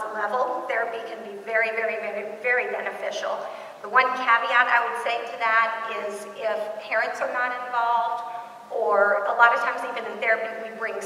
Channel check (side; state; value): both; identical; correlation 1.00